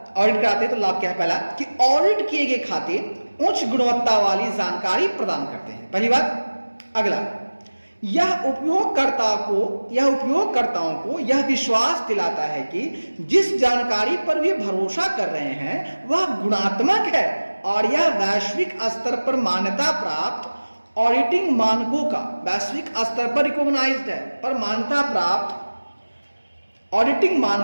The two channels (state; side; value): inverted; both; correlation -1.00